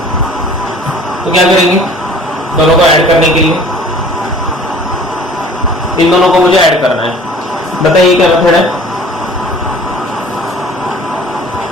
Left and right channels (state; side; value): normal; both; correlation 0.49